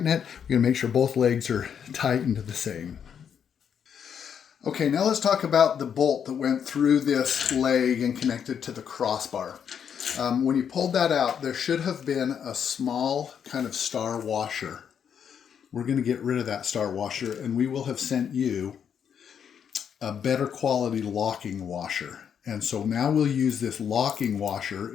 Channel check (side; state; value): right; quieter; 7.9 dB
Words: it. We're going to make sure both legs are tightened the same. Okay, now let's talk about the bolt that went through this leg and connected to the crossbar. When you pulled that out, there should have been a small kind of star washer. We're going to get rid of that star washer, and we will have sent you a better quality locking washer. And so now we'll use this locking washer